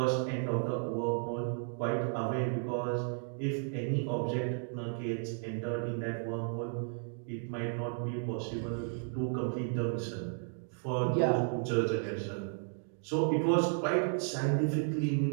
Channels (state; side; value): silent; left; 55 dB below the other